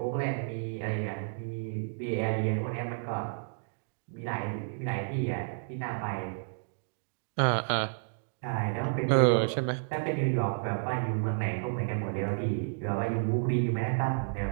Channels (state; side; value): silent; left; digital silence